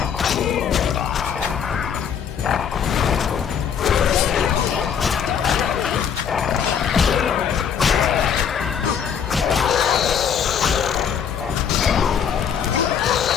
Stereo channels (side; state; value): right; quieter; 7.7 dB